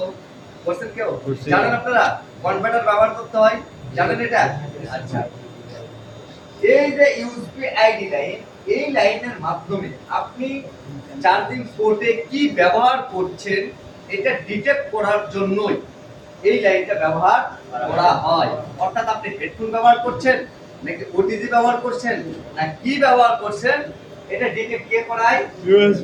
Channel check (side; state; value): both; identical; correlation 1.00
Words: করছেন কেউ? করছি। জানেন আপনারা কনভার্টার ব্যবহার করতে হয়? জানেন এটা? আচ্ছা, এই যে ইউএসবি আইডি লাইন, এই লাইনের মাধ্যমে আপনি চার্জিং পোর্টে কি ব্যবহার করছেন এটা ডিটেক্ট করার জন্যই এই লাইনটা ব্যবহার করা হয়। অর্থাৎ আপনি হেডফোন ব্যবহার করছেন নাকি ওটিজি ব্যবহার করছেন না কি ব্যবহার করছেন এটা ডিটেক্ট কে করায়?